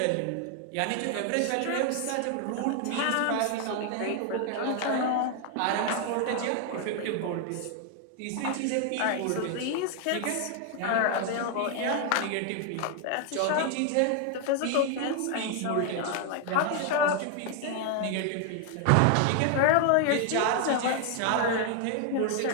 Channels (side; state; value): both; different; correlation 0.00